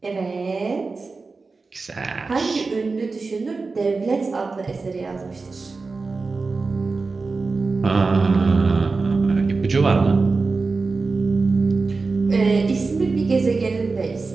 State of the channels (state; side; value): quieter; left; 4.1 dB